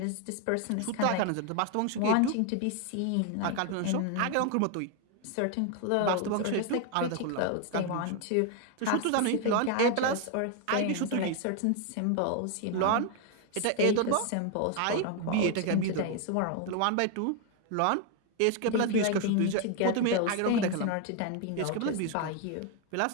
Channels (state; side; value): different; both; correlation 0.01